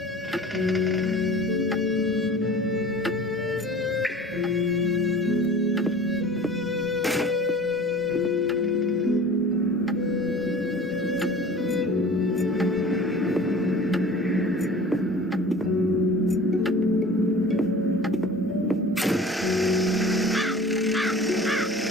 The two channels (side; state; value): both; normal; correlation 0.42